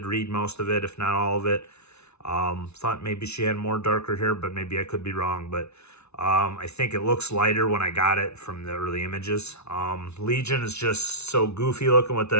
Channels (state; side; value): late; right; 0.81 ms